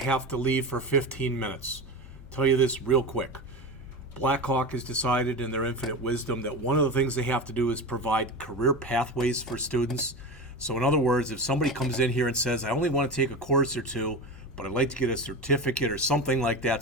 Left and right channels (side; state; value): both; normal; correlation 0.25